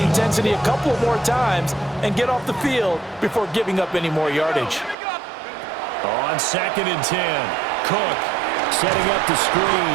intensity a couple more times and get off the field before giving up any more yardage. On 2nd and 10, Cook setting up the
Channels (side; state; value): left; drops out; at 5.0 s